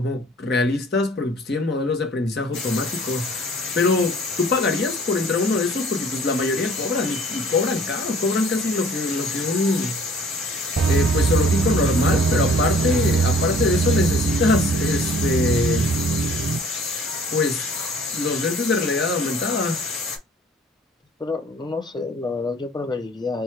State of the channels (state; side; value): normal; both; correlation 0.53